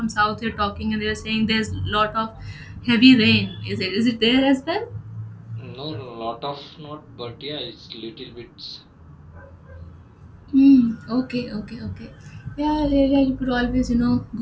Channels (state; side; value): identical; both; correlation 1.00